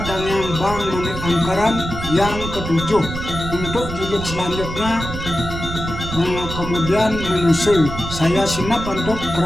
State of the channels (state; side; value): noise; right; rumble, 7 dB below the sound